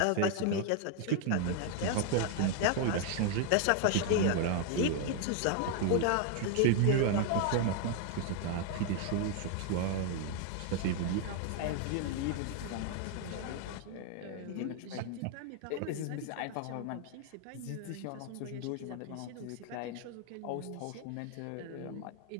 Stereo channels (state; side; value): different; both; correlation 0.01